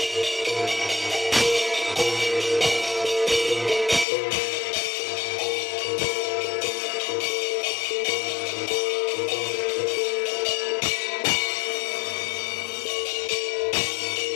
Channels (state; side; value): drops out; right; at 4.0 s